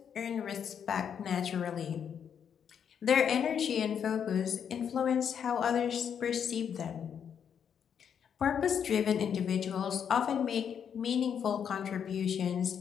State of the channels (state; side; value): quieter; right; 8.0 dB